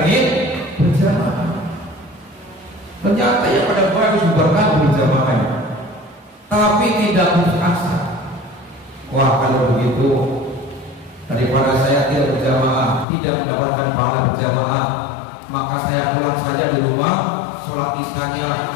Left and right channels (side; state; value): right; drops out; at 13.1 s